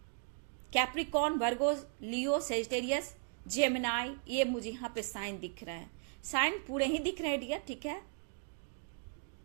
कैप्रिकॉर्न, वर्गो, लियो, सेजिटेरियस, जेमिनाई, ये मुझे यहाँ पे साइन दिख रहे हैं। साइन पूरे ही दिख रहे हैं डियर, ठीक है।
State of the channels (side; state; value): left; silent; 53 dB below the other